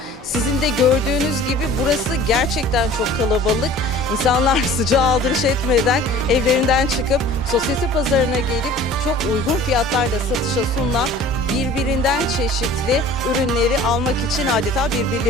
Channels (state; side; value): normal; both; correlation 0.46